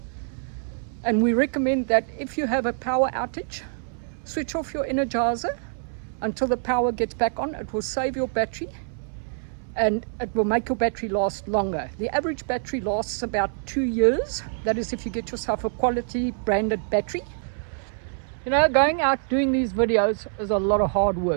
and we recommend that if you have a power outage, switch off your energizer until the power gets back on. It will save your battery and it will make your battery last longer. The average battery lasts about 2 years. That is if you get yourself a quality branded battery. You know, going out doing these videos is a lot of hard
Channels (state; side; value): silent; left; 61 dB below the other